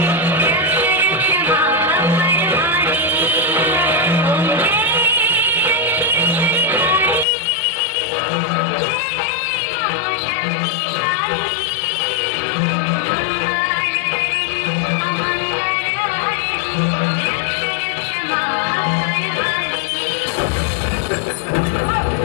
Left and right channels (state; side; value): drops out; right; at 7.2 s